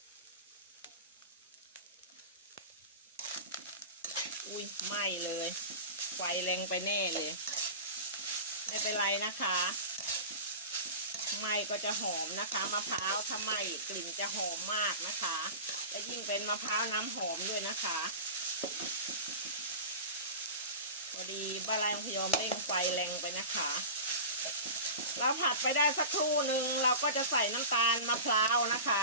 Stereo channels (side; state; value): both; inverted; correlation -0.31